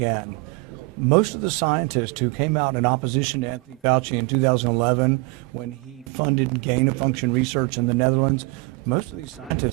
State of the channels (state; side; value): quieter; left; 25.2 dB